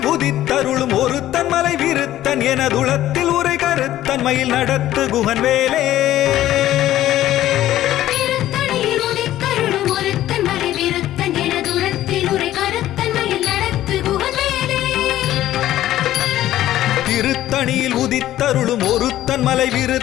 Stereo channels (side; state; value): right; quieter; 13.6 dB